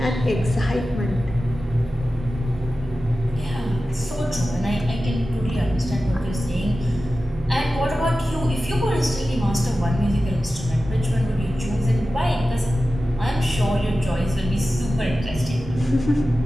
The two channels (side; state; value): both; normal; correlation 0.94